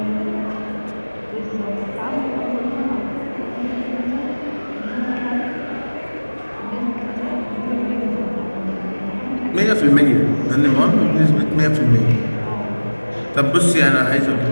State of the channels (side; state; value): both; inverted; correlation -1.00